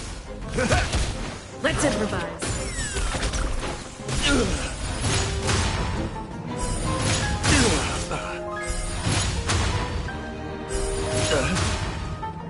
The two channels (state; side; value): identical; both; correlation 1.00